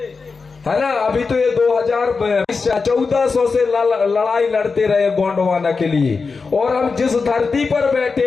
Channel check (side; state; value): right; quieter; 4.6 dB